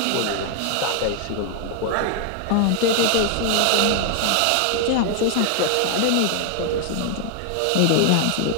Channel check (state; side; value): different; both; correlation 0.00